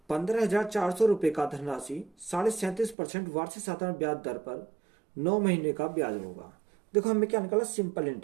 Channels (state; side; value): drops out; left; at 3.0 s